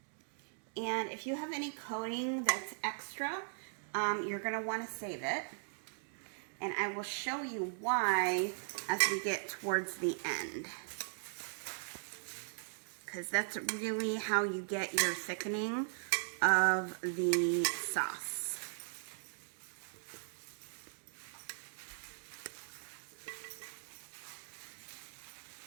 And if you have any coating that's extra, you're going to want to save it. And I will show you why as we get towards the end, because that's really how you get your thickening of the sauce.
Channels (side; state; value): left; silent; digital silence